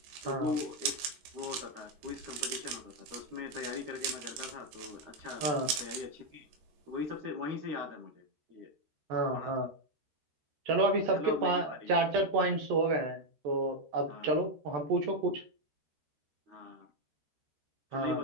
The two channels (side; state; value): left; late; 13 ms